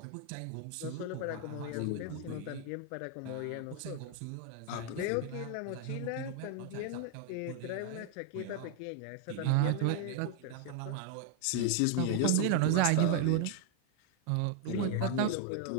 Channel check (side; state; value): both; different; correlation 0.00